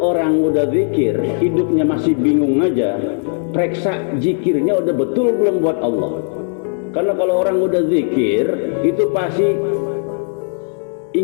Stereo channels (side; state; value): right; silent; 67 dB below the other